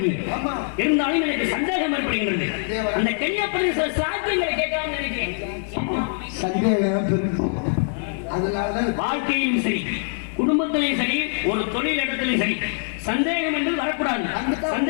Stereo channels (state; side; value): silent; right; digital silence